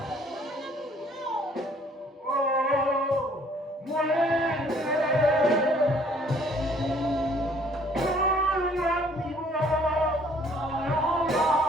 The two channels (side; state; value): both; normal; correlation 0.59